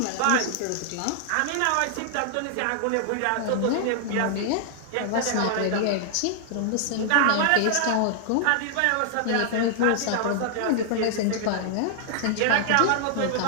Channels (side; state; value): both; different; correlation -0.01